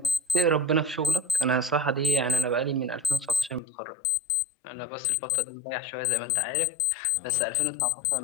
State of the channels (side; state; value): right; drops out; at 3.6 s